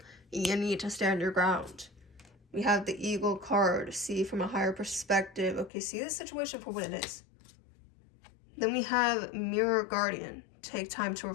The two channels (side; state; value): right; drops out; at 5.7 s